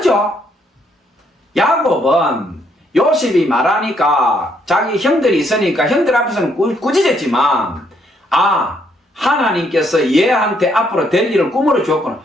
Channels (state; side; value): normal; both; correlation 0.71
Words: 야곱은 요셉이 말하니까 자기 형들이 있으니까 형들 앞에서는 꾸짖었지만 하나님께서 얘한테 앞으로 될 일을 꿈으로 주었구나